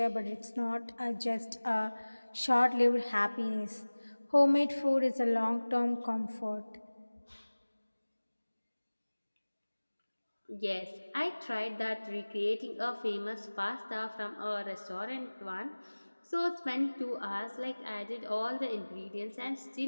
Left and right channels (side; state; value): both; inverted; correlation -1.00